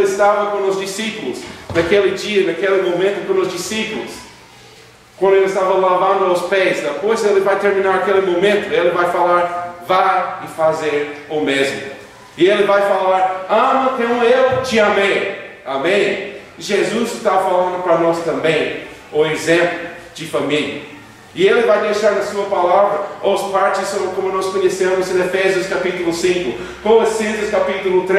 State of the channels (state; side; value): identical; both; correlation 1.00